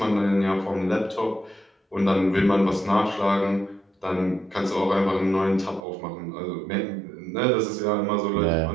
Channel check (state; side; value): drops out; left; at 5.9 s